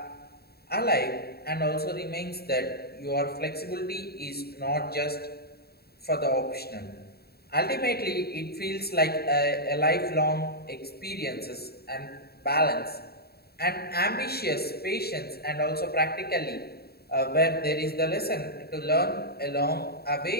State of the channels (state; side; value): late; right; 0.46 ms